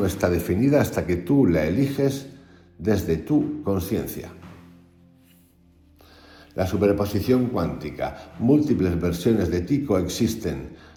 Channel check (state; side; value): identical; both; correlation 1.00